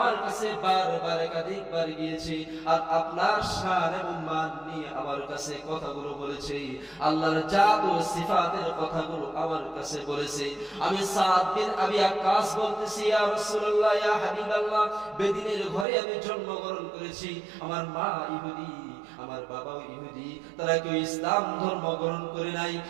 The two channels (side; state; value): left; drops out; at 15.9 s